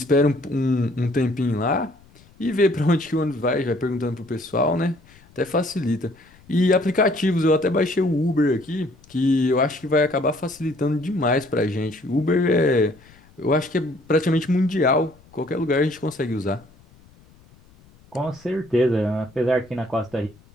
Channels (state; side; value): noise; left; rumble, 27 dB below the sound